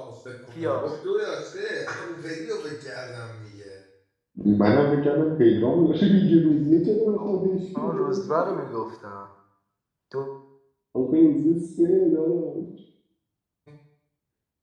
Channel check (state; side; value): identical; both; correlation 1.00